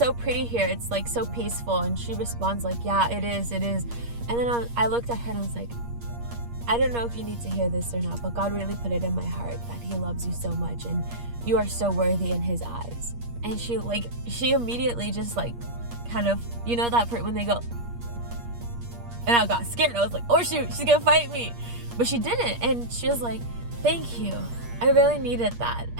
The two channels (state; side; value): late; left; 8.5 ms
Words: pretty here, it's like so peaceful. And she responds like, yeah, it is. And then I looked at her and I was like, I don't know if you need to hear this or not, but God really put it in my heart that he loves you so much and you are so worthy in his eyes. And she immediately just like kind of, you know that part when they go, and I got scared. I was like, oh shoot, she's gonna fight me. But she didn't, and she was like, thank you, I really needed that,